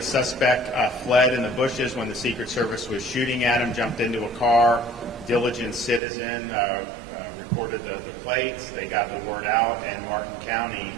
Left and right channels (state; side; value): drops out; left; at 6.0 s